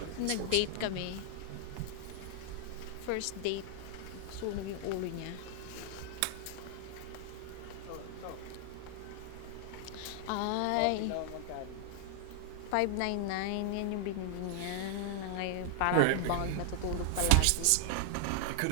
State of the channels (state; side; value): different; both; correlation -0.01